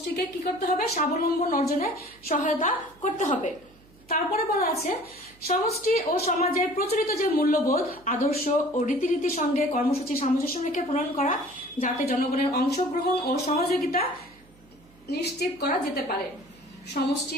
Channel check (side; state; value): right; noise; hum, 27 dB below the sound